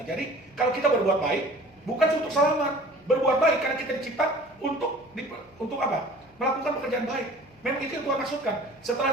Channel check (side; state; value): left; noise; hum, 29 dB below the sound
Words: Jadi kalau kita berbuat baik, bukan untuk selamat. Berbuat baik karena kita dicipta untuk apa? Melakukan pekerjaan baik. Memang itu yang Tuhan maksudkan.